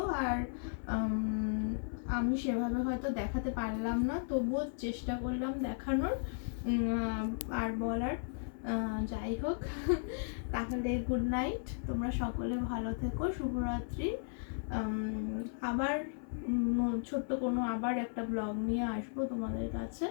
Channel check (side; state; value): right; silent; 54 dB below the other